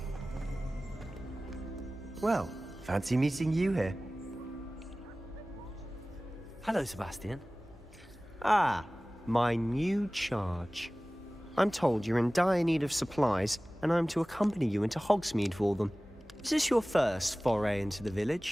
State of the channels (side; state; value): both; normal; correlation 0.98